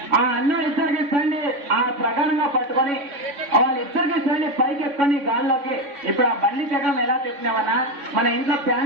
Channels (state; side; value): late; left; 3.5 ms